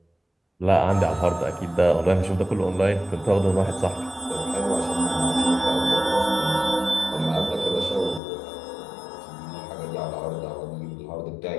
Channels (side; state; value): right; drops out; at 8.2 s